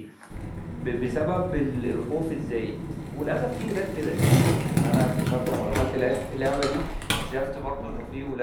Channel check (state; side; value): identical; both; correlation 1.00